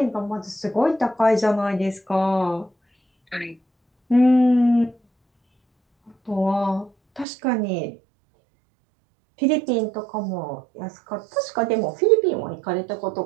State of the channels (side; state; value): left; drops out; at 7.2 s